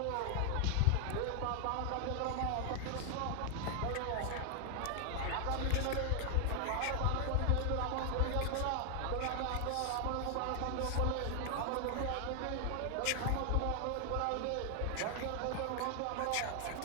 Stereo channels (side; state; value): both; different; correlation 0.00